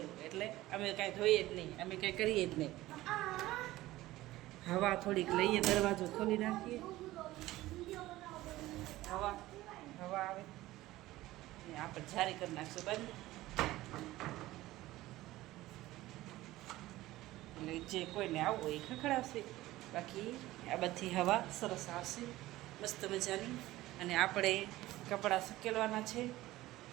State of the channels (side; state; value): left; quieter; 16.9 dB